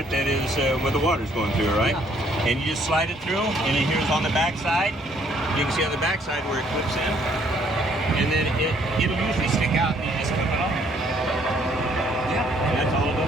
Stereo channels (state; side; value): normal; both; correlation 0.64